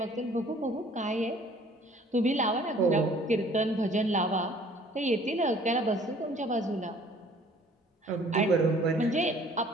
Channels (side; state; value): both; normal; correlation 0.55